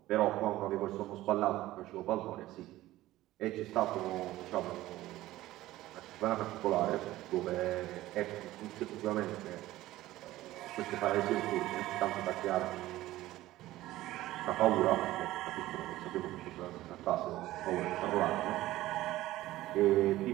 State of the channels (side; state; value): left; quieter; 16.1 dB